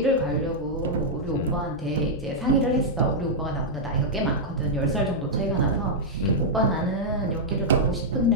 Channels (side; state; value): both; normal; correlation -0.06